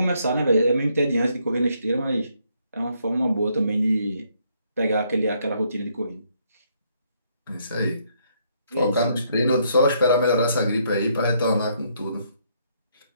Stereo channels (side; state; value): both; inverted; correlation -0.71